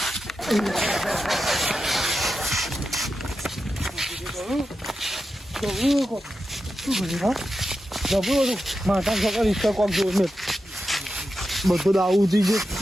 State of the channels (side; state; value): both; normal; correlation 0.90